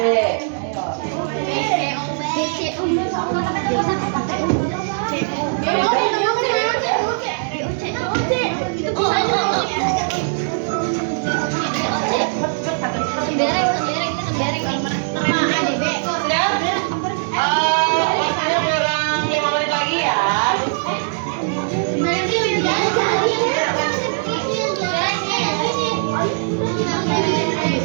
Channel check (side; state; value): left; silent; digital silence